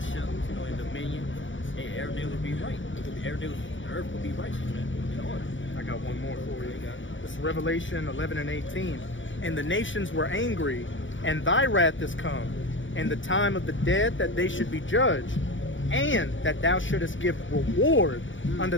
in dominion, hey, everything will be right. The earth will be righteous, man. In order. I got one more for you. This is Revelation 11 and 18. And the nations were angry, and thy wrath is come, and the time of the dead that they should be judged, and that thou shouldest give reward unto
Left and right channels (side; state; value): right; late; 0.56 ms